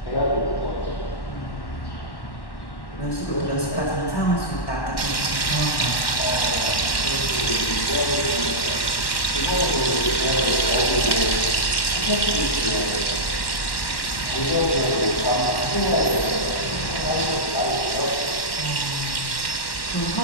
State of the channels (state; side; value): late; right; 1.1 ms